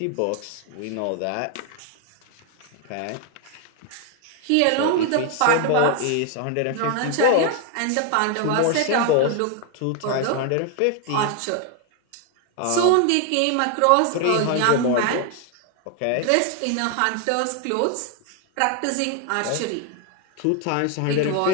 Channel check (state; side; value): different; both; correlation 0.01